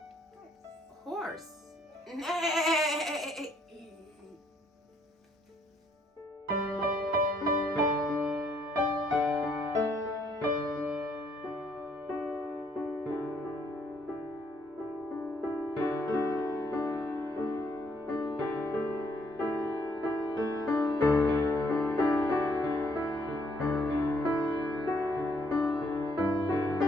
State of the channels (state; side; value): normal; both; correlation 0.68